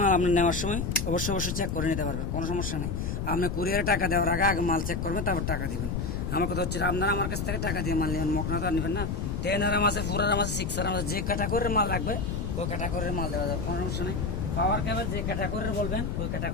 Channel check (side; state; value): left; noise; rumble, 2 dB below the sound